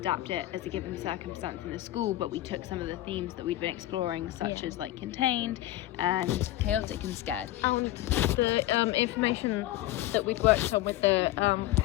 it as a given circumstance in the school, but we took some of the themes that we'd been exploring, such as like contained and chaotic and scared. And the information that we'd worked on with the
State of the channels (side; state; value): right; quieter; 15.4 dB